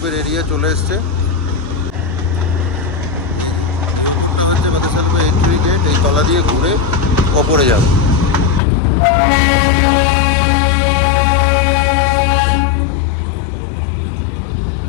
এরিয়া চলে এসছে। হচ্ছে বাতাসা লুপের এন্ট্রি গেট, এই তলা দিয়ে ঘুরে ওপরে যাবে।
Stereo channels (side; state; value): right; drops out; at 8.6 s